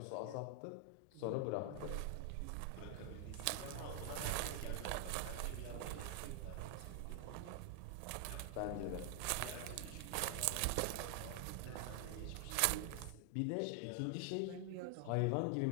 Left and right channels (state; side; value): different; both; correlation 0.00